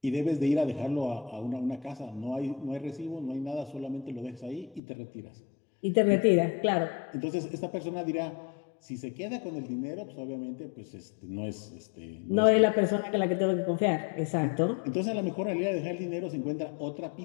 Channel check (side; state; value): right; drops out; at 4.8 s